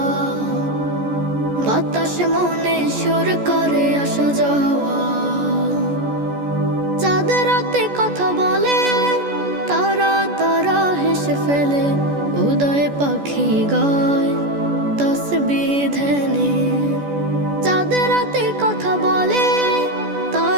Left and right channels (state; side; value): late; left; 14 ms